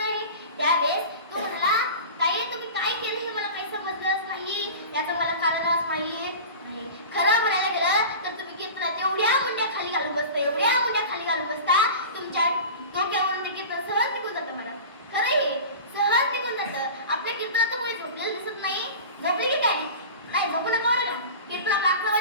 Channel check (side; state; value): both; inverted; correlation -0.34